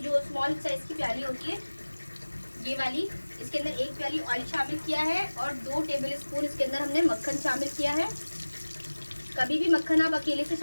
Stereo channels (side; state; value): both; inverted; correlation -1.00